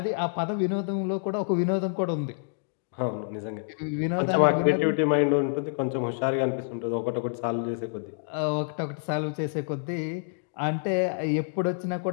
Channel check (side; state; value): right; silent; digital silence